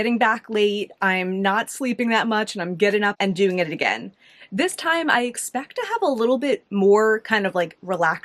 back late. I'm not sleeping that much, and I'm getting up and doing it again. This time I expect to have a little bit more kind of like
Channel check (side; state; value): both; identical; correlation 1.00